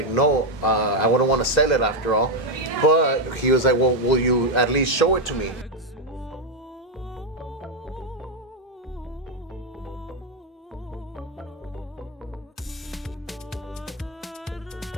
no, I wouldn't want to sell it after all. But he was like, well, will you at least show it to me?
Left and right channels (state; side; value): normal; both; correlation 0.03